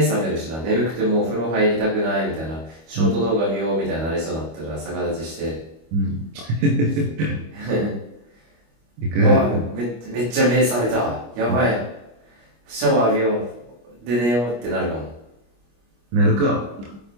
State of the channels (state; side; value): late; left; 25 ms